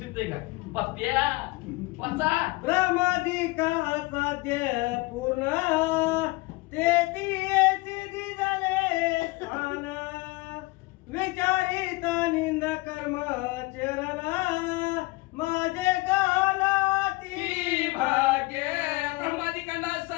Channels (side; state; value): right; quieter; 23.1 dB